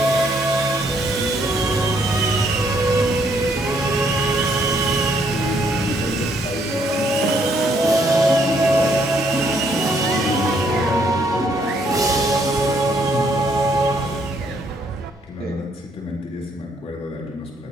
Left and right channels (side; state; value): both; normal; correlation 0.69